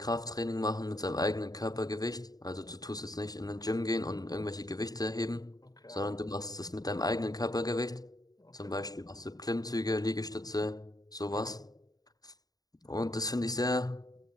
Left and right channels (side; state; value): right; late; 0.18 ms